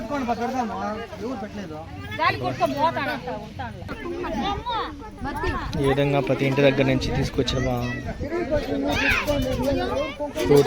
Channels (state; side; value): identical; both; correlation 1.00